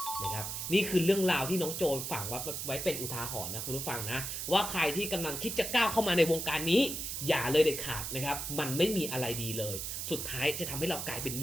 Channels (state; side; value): noise; right; hiss, 4 dB below the sound